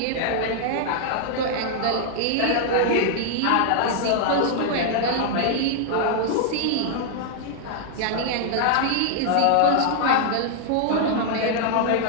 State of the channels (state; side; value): different; both; correlation -0.01